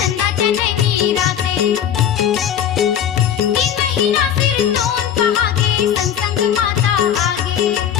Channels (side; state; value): right; quieter; 9.4 dB